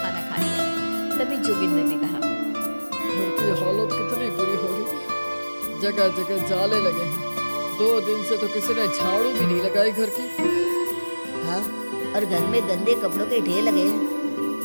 खा लिया। तभी जोगिंदर ने कहा, घर की हालत कितनी बुरी हो रही है, जगह जगह जाले लगे हैं। 2 दिन से तो किसी ने झाड़ू भी नहीं लगाई घर की। हाँ, और घर में गंदे कपड़ों के ढेर लगे हैं।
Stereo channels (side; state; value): both; inverted; correlation -1.00